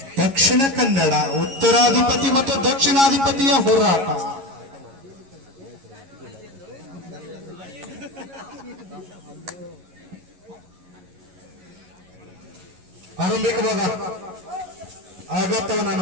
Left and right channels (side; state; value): left; late; 11 ms